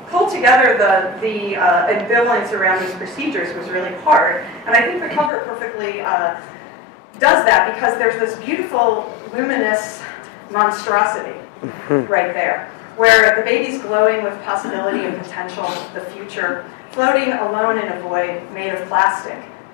pull together the ambivalence around these procedures was really hard. And I think the cover perfectly does that, because there's this beautiful, luminous monstrosity right there, where the baby's glowing with possibility and potential, the future, floating alone in a void made of plastic,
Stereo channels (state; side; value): drops out; right; at 5.3 s